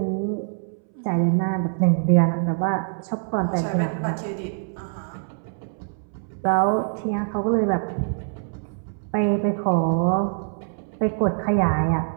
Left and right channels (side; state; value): left; silent; 62 dB below the other